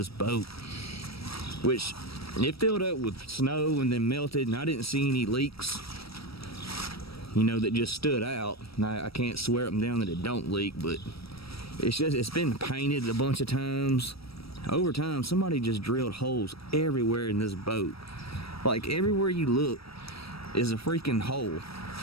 boat, which it filled up with snow and then melted, and I didn't see any leaks, that just stood out. Now, I can't swear up and down that it don't leak, but it's been painted a bunch of times. Over time, somebody just drilled holes everywhere in this boat. Like, everywhere you look is a freaking hole.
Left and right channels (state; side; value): late; right; 0.76 ms